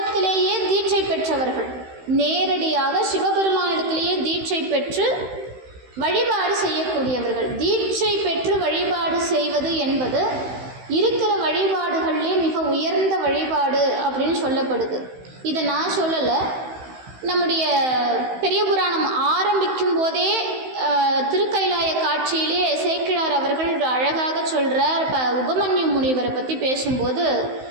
தீட்சை பெற்றவர்கள். நேரடியாக சிவபெருமானிடத்திலேயே தீட்சை பெற்று வழிபாடு செய்யக்கூடியவர்கள். தீட்சை பெற்று வழிபாடு செய்வது என்பது இருக்கிற வழிபாடுகளிலே மிக உயர்ந்த வழிபாடு அப்படின்னு சொல்லப்படுது. இதை நான் சொல்லலை, நம்முடைய பெரிய புராணம் ஆரம்பிக்கும் போதே திருக்கைலாய காட்சியிலே சேக்கிழார் அவர்கள் அழகாக சொல்கிறார். உபமன்யு முனிவரை பற்றி பேசும்போது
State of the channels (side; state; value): left; late; 16 ms